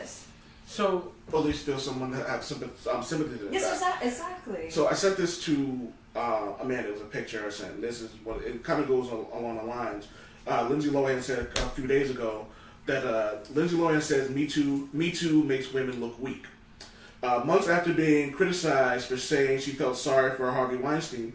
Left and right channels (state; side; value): identical; both; correlation 1.00